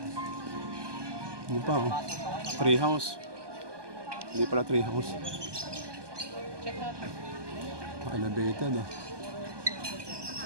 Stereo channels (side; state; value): left; late; 1.2 ms